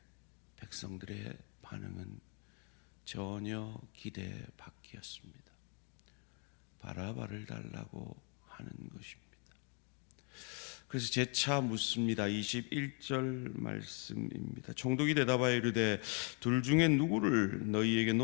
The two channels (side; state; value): right; quieter; 38.1 dB